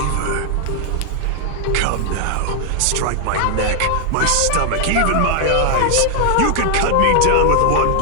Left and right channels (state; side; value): different; both; correlation 0.00